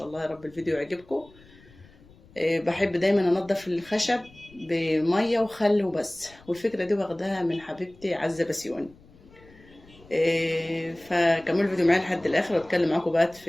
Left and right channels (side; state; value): left; noise; rumble, 25 dB below the sound